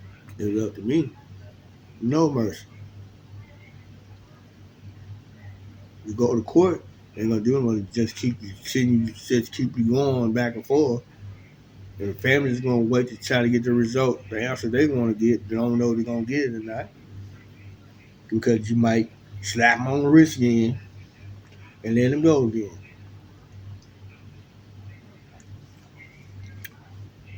It's up to me. No mercy. You go to court, they ain't gonna do nothing. Just keep you sitting, just keep you going back and forth. And the family's gonna wait to try to get the result, the answer they want to get. They don't know if they're gonna get it or not because you might slap them on the wrist again and let them go again.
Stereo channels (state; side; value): identical; both; correlation 1.00